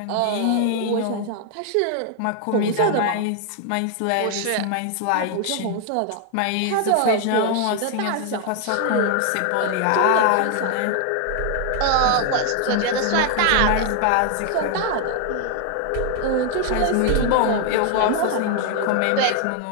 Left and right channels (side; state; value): both; different; correlation 0.00